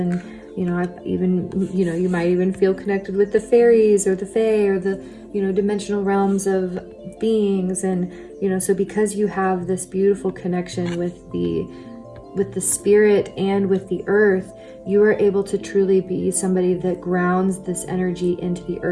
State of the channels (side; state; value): both; identical; correlation 1.00